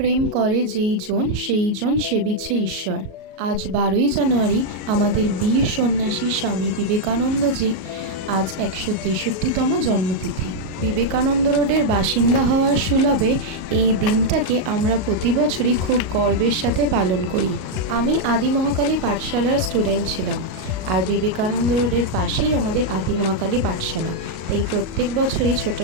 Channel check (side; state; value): left; late; 37 ms